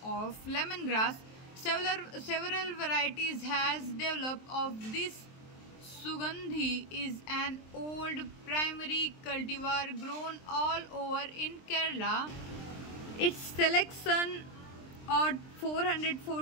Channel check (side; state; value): right; late; 23 ms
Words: of lemongrass, several varieties has developed of this. Sugandhi is an old primary cultivar grown all over in Kerala. Its selection at